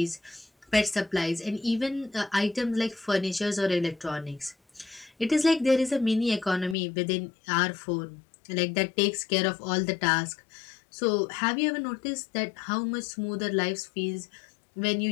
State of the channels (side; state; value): right; drops out; at 6.8 s